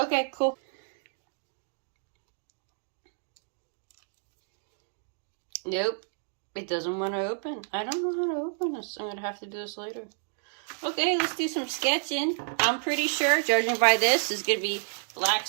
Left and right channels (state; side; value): silent; left; digital silence